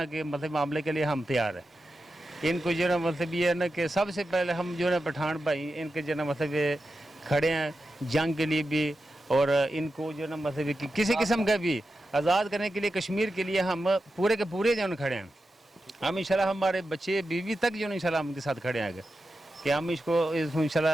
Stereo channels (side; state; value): both; normal; correlation 0.90